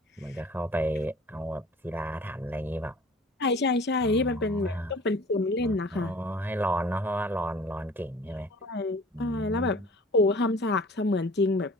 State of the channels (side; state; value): both; normal; correlation 0.47